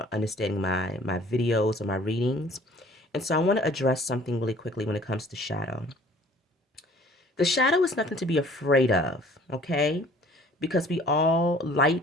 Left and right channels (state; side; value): normal; both; correlation 0.52